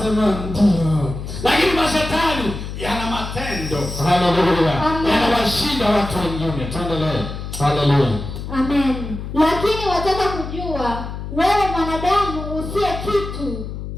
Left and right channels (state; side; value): noise; left; hum, 8 dB below the sound